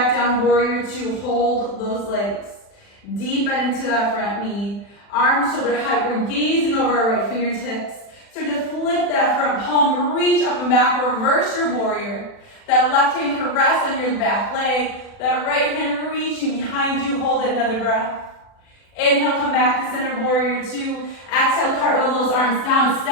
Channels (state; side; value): late; right; 40 ms